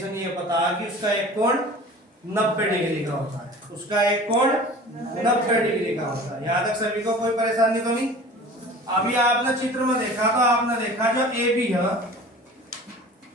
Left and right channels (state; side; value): normal; both; correlation 0.41